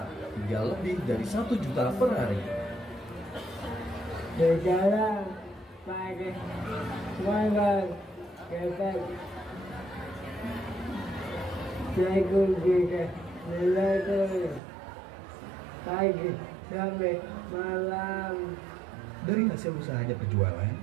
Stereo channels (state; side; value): drops out; left; at 14.6 s